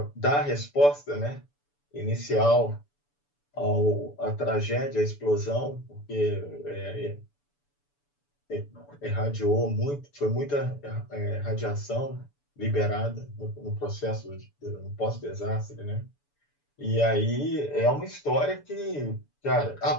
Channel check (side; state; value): right; late; 6.9 ms